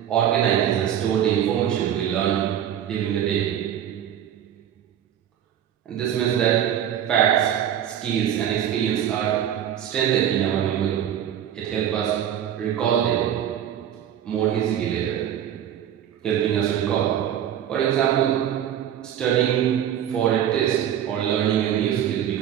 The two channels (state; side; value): quieter; left; 10.1 dB